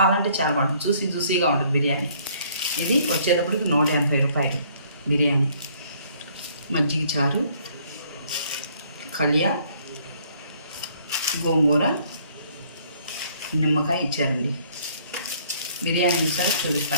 అంటే చాలా బాగుంటుంది. జ్యూసీగా ఉంటుంది బిర్యానీ. ఇది వచ్చేటప్పటికి 180 రూపాయలు బిర్యానీ. మజ్జిగ చారు, కలియా, గోంగూర, నిమ్మకాయ ఇచ్చారండి. బిర్యానీ ఈసారి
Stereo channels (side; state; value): both; inverted; correlation -0.61